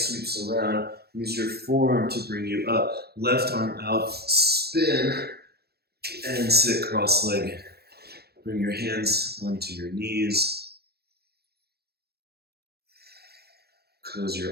around. Use your forearm to bring you up. Left arm out. Spin and sit cross-legged. Bring your hands onto your knees. Close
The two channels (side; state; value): left; late; 0.47 ms